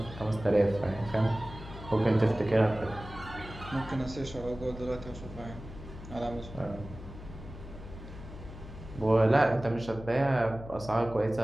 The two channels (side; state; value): left; noise; hum, 13 dB below the sound